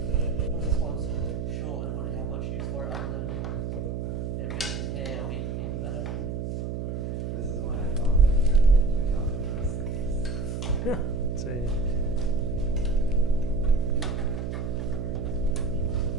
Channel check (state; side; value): noise; right; hum, 3 dB below the sound